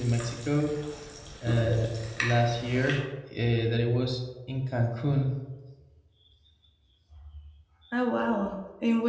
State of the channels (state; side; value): identical; both; correlation 1.00